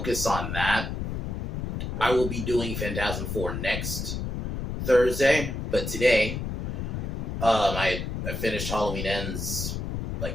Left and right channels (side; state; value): left; noise; rumble, 3 dB below the sound